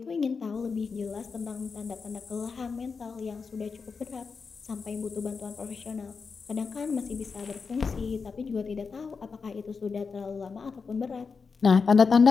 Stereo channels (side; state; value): right; quieter; 5.1 dB